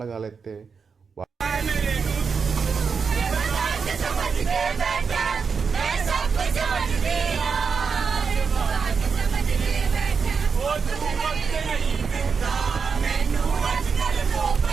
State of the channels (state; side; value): quieter; left; 5.6 dB